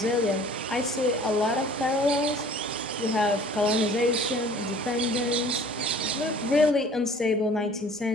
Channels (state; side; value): normal; both; correlation 0.50